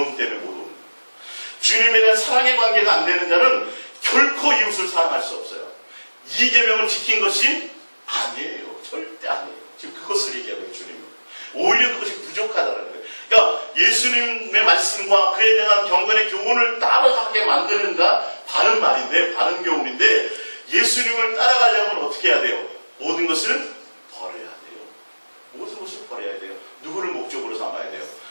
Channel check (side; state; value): both; inverted; correlation -1.00